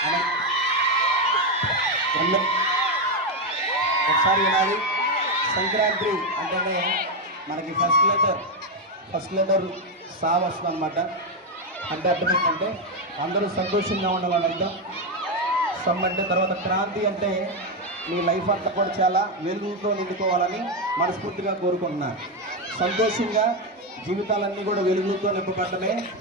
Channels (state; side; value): normal; both; correlation 0.07